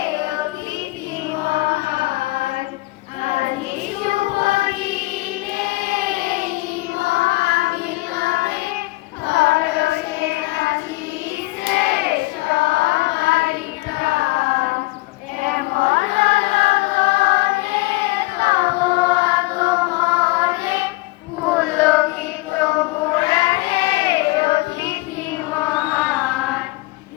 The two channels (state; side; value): quieter; right; 22.0 dB